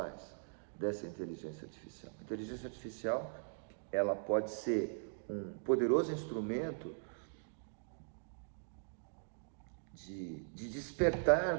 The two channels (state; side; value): silent; left; digital silence